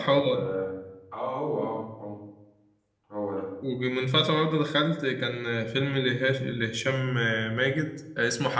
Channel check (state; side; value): identical; both; correlation 1.00